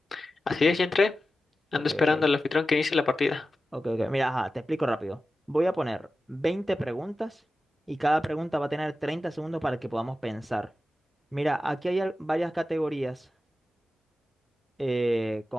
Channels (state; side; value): normal; both; correlation 0.93